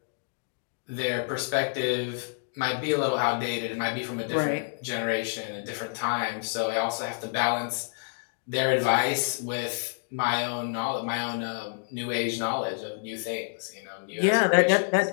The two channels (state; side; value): silent; right; digital silence